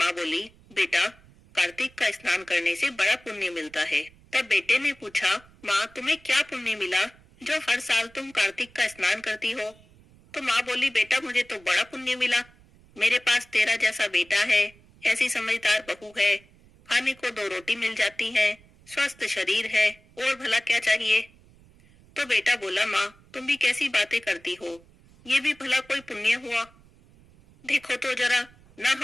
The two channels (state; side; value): noise; right; rumble, 27 dB below the sound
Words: बोली, बेटा, कार्तिक का स्नान करने से बड़ा पुण्य मिलता है। तब बेटे ने पूछा, माँ, तुम्हें क्या पुण्य मिला जो हर साल तुम कार्तिक का स्नान करती हो? तो माँ बोली, बेटा, मुझे तो बड़ा पुण्य मिला। मेरे पास तेरा जैसा बेटा है, ऐसी समझदार बहू है, खाने को 2 रोटी मिल जाती है, स्वस्थ शरीर है, और भला क्या चाहिए? तो बेटा बोला, माँ, तुम भी कैसी बातें करती हो, ये भी भला कोई पुण्य हुआ? देखो तो जरा, ना